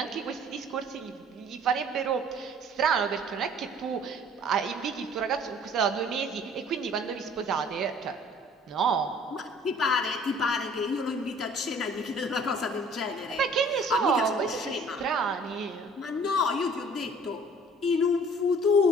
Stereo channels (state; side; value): normal; both; correlation 0.52